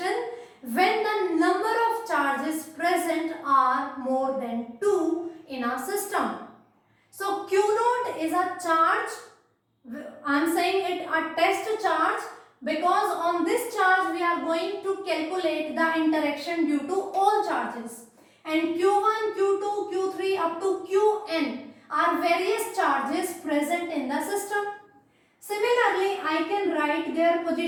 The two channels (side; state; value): both; identical; correlation 1.00